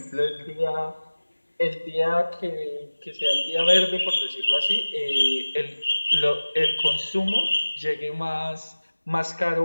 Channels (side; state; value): both; inverted; correlation -1.00